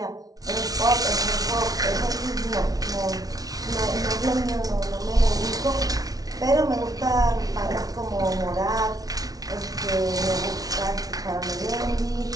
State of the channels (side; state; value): left; late; 0.18 ms